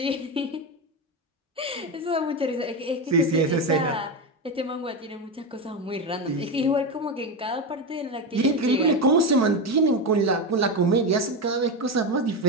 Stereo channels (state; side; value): normal; both; correlation 0.15